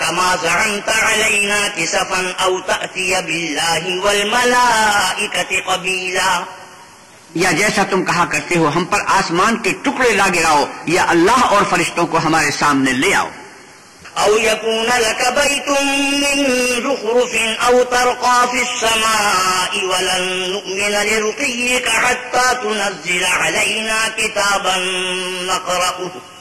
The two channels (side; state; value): both; identical; correlation 1.00